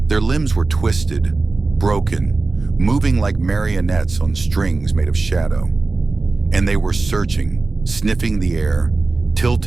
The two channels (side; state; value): left; quieter; 3.6 dB